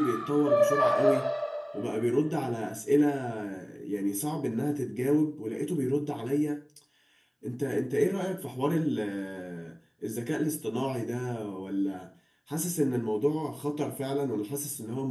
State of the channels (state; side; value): identical; both; correlation 1.00